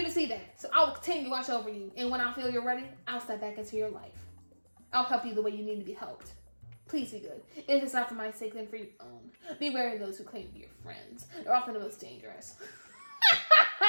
to see that, so I will continue to watch over you, and when I feel you're ready, I'll step back into your life. I'll help you the way you need to be helped. Please be good. If it's not for my sake, then for your own. Be wary of those who claim to be your friends. They're often the most dangerous.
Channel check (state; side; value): inverted; both; correlation -1.00